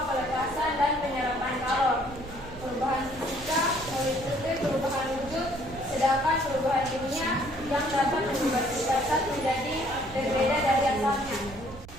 pelepasan dan penyerapan kalor. Perubahan fisika meliputi perubahan wujud, sedangkan perubahan kimia yang dapat mengubah sifat zat menjadi berbeda dari asalnya.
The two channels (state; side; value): noise; right; rumble, 16 dB below the sound